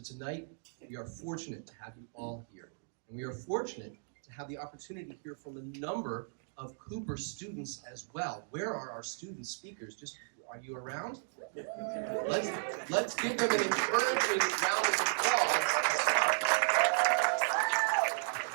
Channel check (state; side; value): silent; left; digital silence